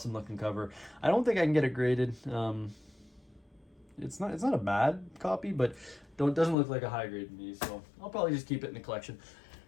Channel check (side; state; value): right; drops out; at 6.6 s